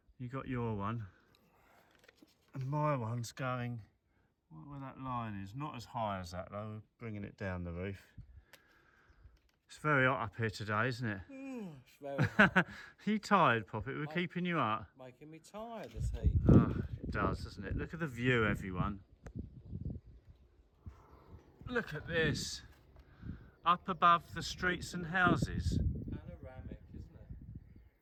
You got your one. And my one's going, where that line is, not as high as that though, bringing it down the roof. It's very hot up here today, isn't it? It's very Are you tired, Poppet? We're keeping you up. making me tired, this heat. Oh, it does, doesn't it? Look at the view, everyone. Look at this. Up above the streets and houses. Panoramic, isn't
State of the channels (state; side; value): identical; both; correlation 1.00